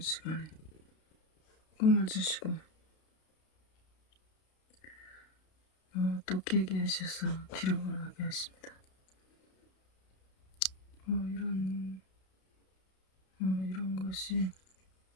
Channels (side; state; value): right; late; 32 ms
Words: 꿈을 주시고 또 깨게 하셔서 기록을 하게 하십니다. 이런 것이